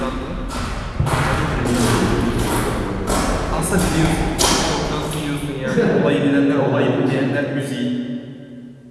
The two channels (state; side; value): identical; both; correlation 1.00